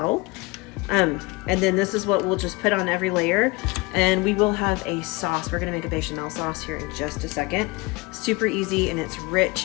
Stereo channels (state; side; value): quieter; right; 24.4 dB